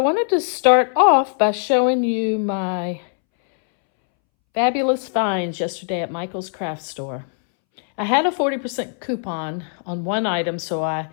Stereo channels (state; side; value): silent; right; 64 dB below the other